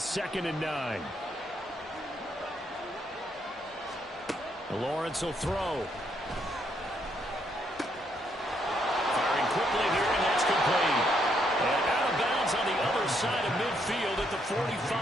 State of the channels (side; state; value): both; normal; correlation 0.74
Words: and 9. Lawrence will throw. Firing quickly here, and that's complete. And out of bounds on the other side of midfield at the